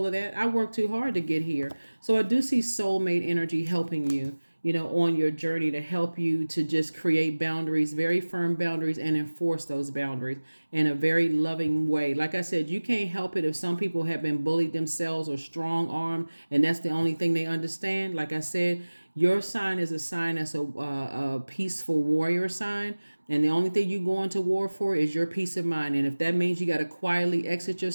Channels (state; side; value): inverted; both; correlation -1.00